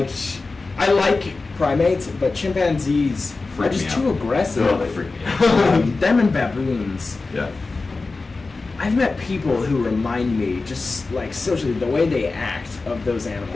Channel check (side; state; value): right; quieter; 3.8 dB